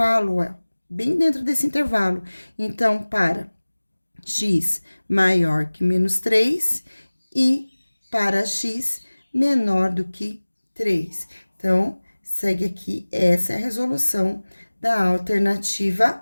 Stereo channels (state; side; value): inverted; both; correlation -1.00